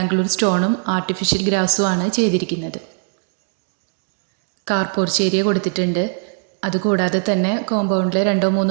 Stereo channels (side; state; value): left; silent; digital silence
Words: സ്റ്റോണും ആർട്ടിഫിഷ്യൽ ഗ്രാസുമാണ് ചെയ്തിരിക്കുന്നത്. കാർ പോർച്ച് ഏരിയ കൊടുത്തിട്ടുണ്ട്. അതുകൂടാതെ തന്നെ കോമ്പൗണ്ടിൽ